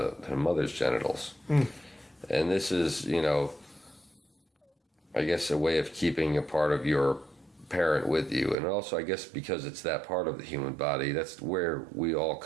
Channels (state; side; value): drops out; left; at 8.6 s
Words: mother's genitals. And this is, I guess, a way of keeping a part of your parent with you, and also I guess because it's that part of the human body, that's where we all